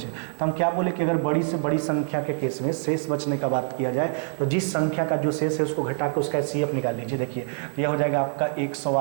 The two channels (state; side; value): silent; left; 56 dB below the other